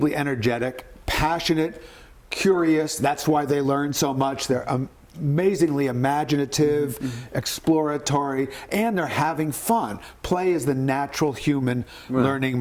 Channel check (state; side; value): identical; both; correlation 1.00